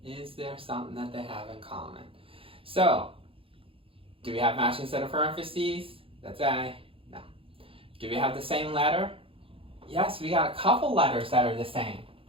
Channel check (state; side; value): late; left; 0.27 ms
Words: is there something that they have in common? So, do we have matching set of parentheses? That's A. No. Do we have the same letter? Yes, we got a couple letters that are the same.